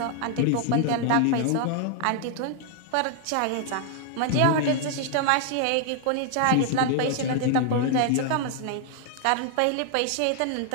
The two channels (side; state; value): both; different; correlation 0.00